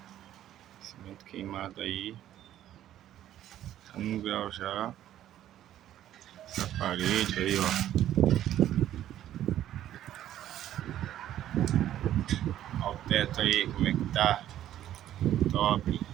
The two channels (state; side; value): quieter; left; 12.1 dB